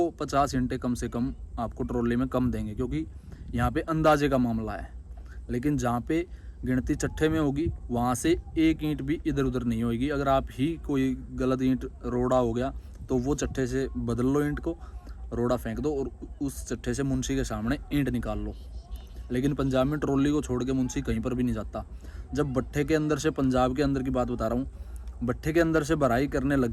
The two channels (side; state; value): both; identical; correlation 1.00